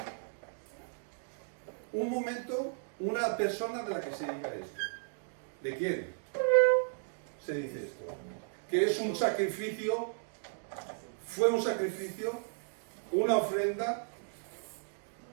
un momento, una persona de la que se diga esto. ¿De quién se dice esto? Que es un sacrificio, fue un sacrificio, una ofrenda,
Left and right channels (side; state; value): left; silent; digital silence